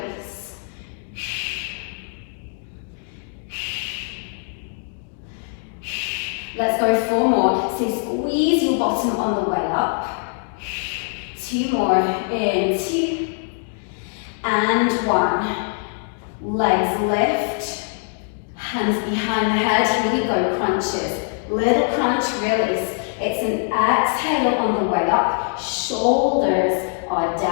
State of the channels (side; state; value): right; silent; 58 dB below the other